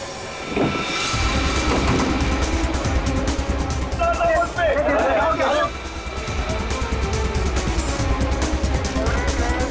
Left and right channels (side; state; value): both; identical; correlation 1.00